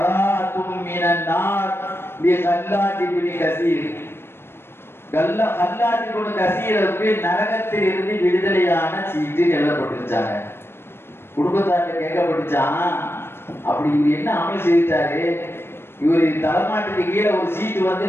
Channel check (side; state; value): right; late; 0.12 ms